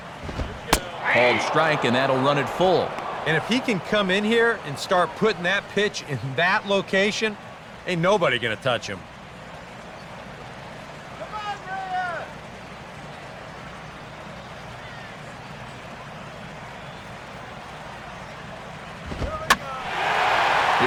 Called strike, and that'll run it full. And if he can come in here and start putting that pitch in that location, ain't nobody gonna touch him. Come on, Reyes!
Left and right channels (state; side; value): identical; both; correlation 1.00